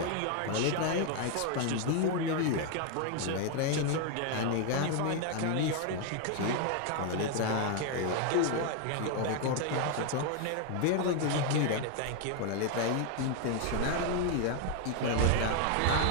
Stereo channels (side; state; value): both; different; correlation 0.01